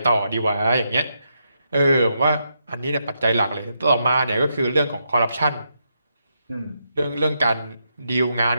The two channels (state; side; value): inverted; both; correlation -0.82